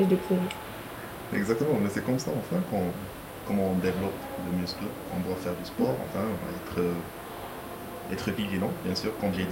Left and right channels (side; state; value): both; identical; correlation 1.00